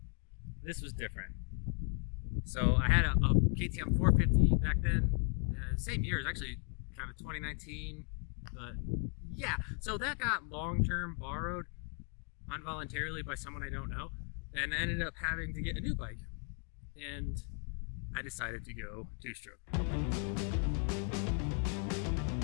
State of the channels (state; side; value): quieter; right; 39.0 dB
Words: this was different. So I had a KTM 450 back then, same year, it was actually kind of 2019, but yeah. So that got long-term borrowed involuntarily by someone I don't know, and I ended up having to get a new bike, and I decided to go two-stroke.